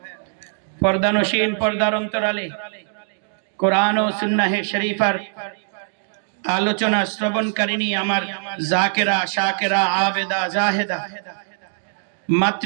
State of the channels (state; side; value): silent; left; digital silence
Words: পর্দানশীন পর্দার অন্তরালে কোরআন ও সুন্নাহ শরীফার আলোচনা শ্রবণকারিণী আমার জাকেরা শাকেরা আবেদা জাহেদা